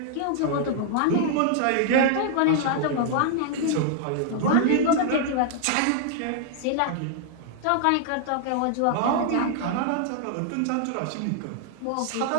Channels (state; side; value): different; both; correlation -0.01